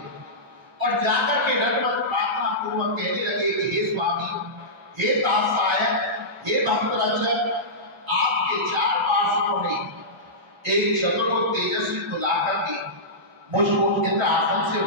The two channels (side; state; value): both; normal; correlation -0.16